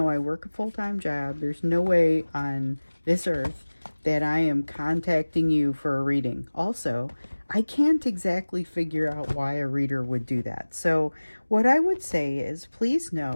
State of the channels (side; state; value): both; inverted; correlation -1.00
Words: I work a full-time job. There's no way on this earth that I am contacting you for a reading. Also, I can't exactly figure out why a reader would do that. So what I would say is, please